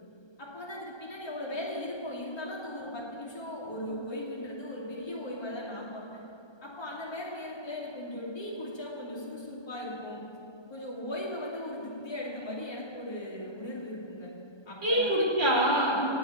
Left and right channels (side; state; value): right; late; 1.3 ms